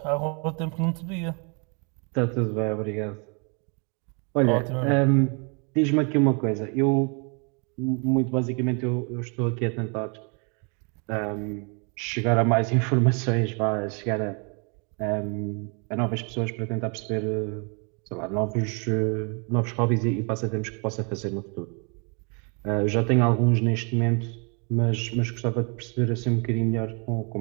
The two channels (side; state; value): left; quieter; 35.6 dB